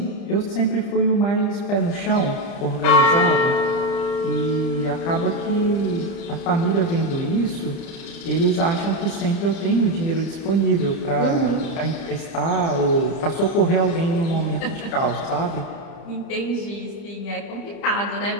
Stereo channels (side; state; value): right; late; 30 ms